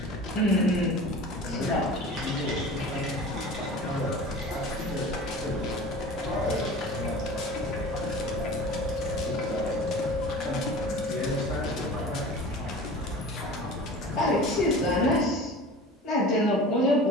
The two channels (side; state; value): both; normal; correlation 0.38